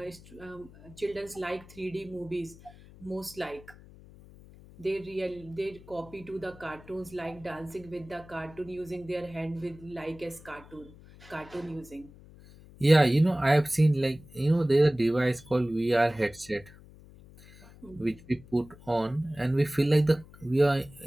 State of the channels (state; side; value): noise; left; hum, 21 dB below the sound